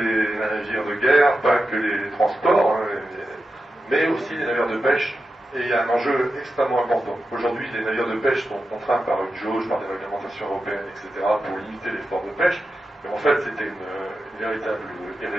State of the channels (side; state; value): both; normal; correlation 0.91